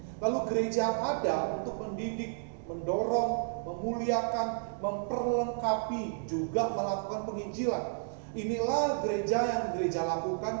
Lalu gereja ada untuk mendidik, mendorong, memuliakan, memperlengkapi, juga melakukan penginjilan. Inilah gereja yang gereja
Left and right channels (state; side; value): silent; left; digital silence